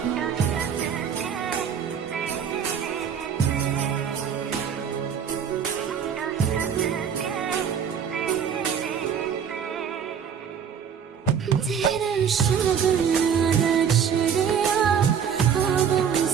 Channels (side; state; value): left; quieter; 7.6 dB